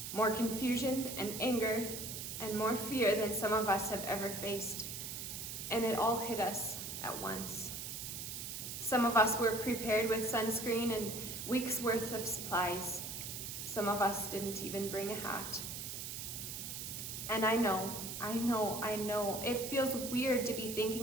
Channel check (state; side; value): noise; right; hiss, 6 dB below the sound